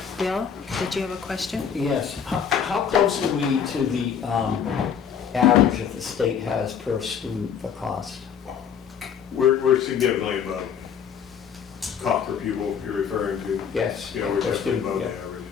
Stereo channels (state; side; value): quieter; right; 7.6 dB